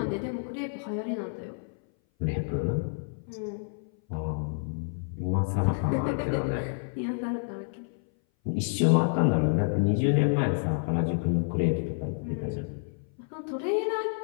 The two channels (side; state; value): right; silent; 57 dB below the other